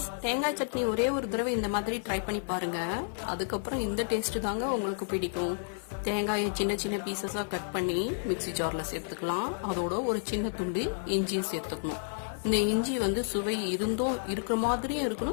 தேங்காய் சட்னி ஒரே ஒரு தடவை இந்த மாதிரி ட்ரை பண்ணி பாருங்கள். அதுக்கப்புறம் இந்த டேஸ்ட்டு தாங்க உங்களுக்கு பிடிக்கும். தேங்காயை சின்ன சின்ன பீசஸாக கட் பண்ணி மிக்ஸி ஜாரில் சேர்த்துக்கலாம். அதோட ஒரு சின்ன துண்டு இஞ்சியை சேர்த்துக்கணும். இந்த இஞ்சி சுவை இருக்கிற மாதிரியும்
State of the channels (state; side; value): silent; right; 57 dB below the other